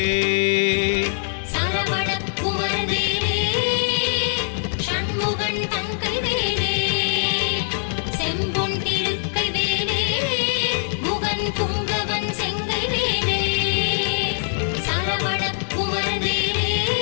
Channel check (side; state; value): right; silent; digital silence